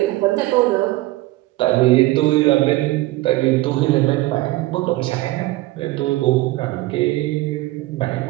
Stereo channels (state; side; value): quieter; left; 18.6 dB